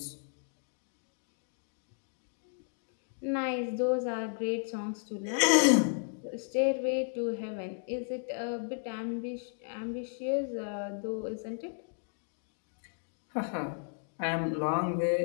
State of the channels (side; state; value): right; silent; digital silence